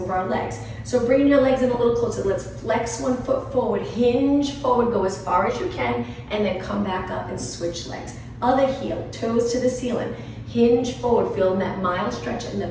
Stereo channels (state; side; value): identical; both; correlation 1.00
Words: our legs. So bring your legs in a little closer. Let's flex 1 foot forward, hinge forward, go as far as you can, and then come back up and switch legs. Other heel, toes to the ceiling. Hinge forward, feel that mild stretch in the